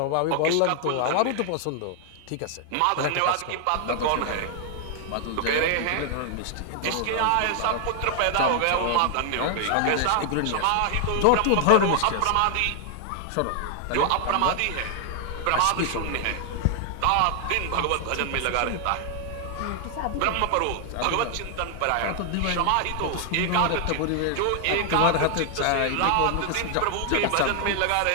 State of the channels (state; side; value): different; both; correlation 0.00